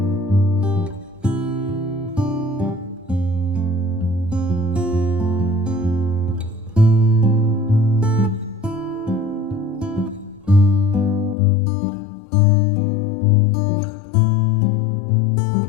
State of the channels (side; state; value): right; drops out; at 11.4 s